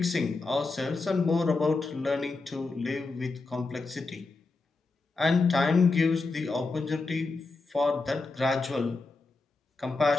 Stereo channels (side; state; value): right; quieter; 3.7 dB